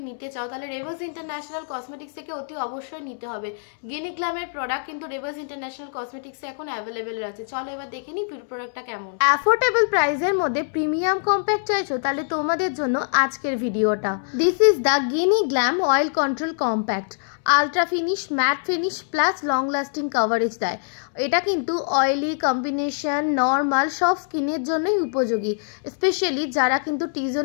নিতে চাও তাহলে রেভাস ইন্টারন্যাশনাল কসমেটিক্স থেকে অতি অবশ্যই নিতে হবে। গিনিগ্লামের প্রোডাক্ট কিন্তু রেভাস ইন্টারন্যাশনাল কসমেটিক্সে এখন অ্যাভেলেবেল আছে। চলো এবার দেখে নিই প্রোডাক্টটা কেমন। অ্যাফোর্ডেবল প্রাইসের মধ্যে প্রিমিয়াম কম্প্যাক্ট চাইছো তাহলে তোমাদের জন্য আজকের ভিডিওটা। This is the Ginniglam oil control compact. Ultra finish, matte finish plus long lasting coverage দেয়। এটা কিন্তু অয়েলি, কম্বিনেশন, নর্মাল সব স্কিনের জন্যই উপযোগী। স্পেশালি যারা কিন্তু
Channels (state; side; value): silent; right; 63 dB below the other